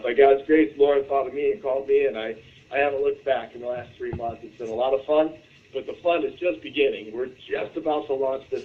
God's grace, Lauren thought of me and called me, and I haven't looked back in the last 3 months. It's been a lot of fun, but the fun is just beginning. We're just about to launch this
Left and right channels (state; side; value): identical; both; correlation 1.00